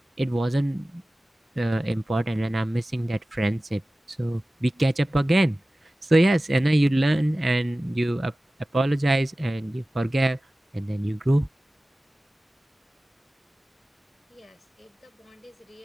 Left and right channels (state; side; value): normal; both; correlation 0.97